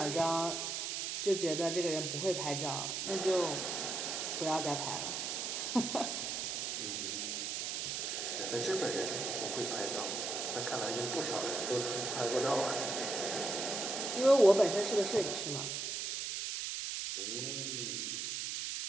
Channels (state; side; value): noise; right; hiss, 2 dB below the sound